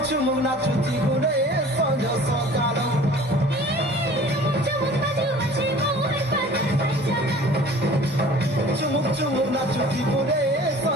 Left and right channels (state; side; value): normal; both; correlation 0.47